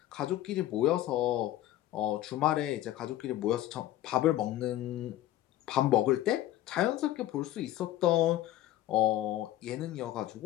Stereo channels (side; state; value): right; quieter; 14.0 dB